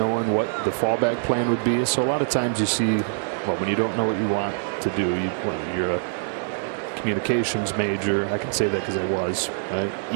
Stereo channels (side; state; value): left; silent; digital silence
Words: what the fallback plan would be. So a lot of times you see, well, when you don't know what you want to do, you're a communications major. I can say that because I was, right?